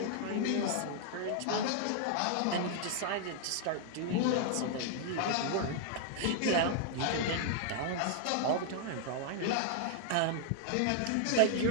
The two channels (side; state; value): both; different; correlation 0.00